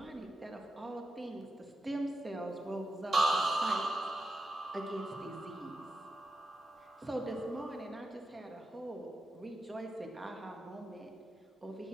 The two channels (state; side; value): normal; both; correlation 0.89